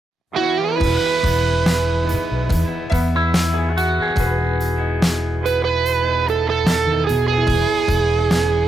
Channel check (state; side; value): normal; both; correlation 0.86